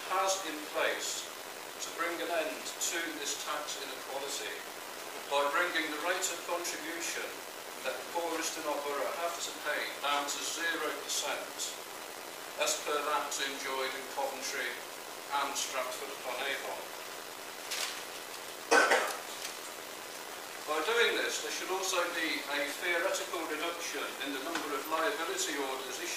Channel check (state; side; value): identical; both; correlation 1.00